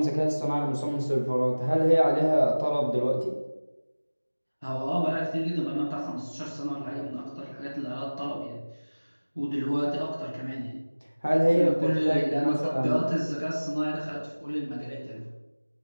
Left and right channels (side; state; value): both; inverted; correlation -1.00